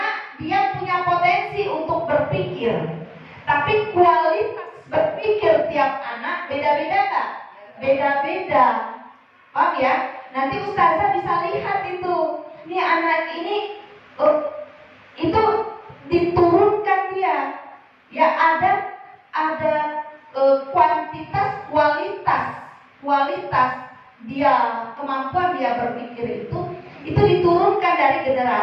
dia punya potensi untuk berpikir. Tapi kualitas berpikir tiap anak beda-beda enggak? Beda-beda. Paham ya? Nanti ustazah bisa lihat itu. Ini anak ini itu diturunkan dia. Ya ada kuantitas, kualitas dia, kemampuan dia berpikir itu diturunkan dari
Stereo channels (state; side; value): identical; both; correlation 1.00